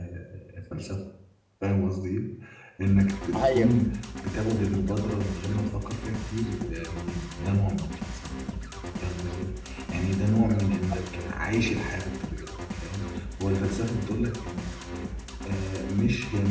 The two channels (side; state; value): both; identical; correlation 1.00